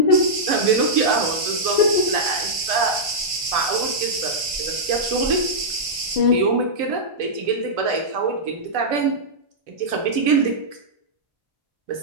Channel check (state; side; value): late; left; 1.5 ms